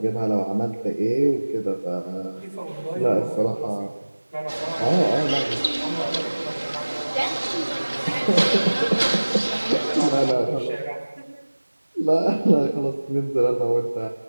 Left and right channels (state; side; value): inverted; both; correlation -1.00